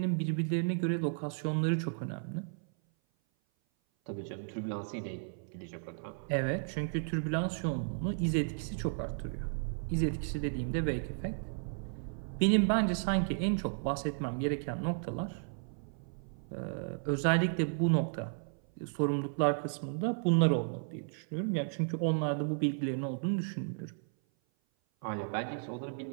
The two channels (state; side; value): silent; left; 55 dB below the other